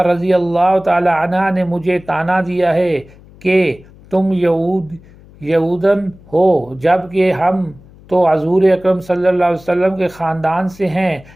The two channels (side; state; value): left; noise; hum, 24 dB below the sound